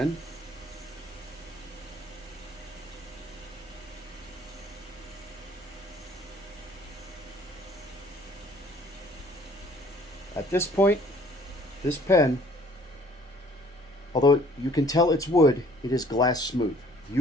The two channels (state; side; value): normal; both; correlation 0.56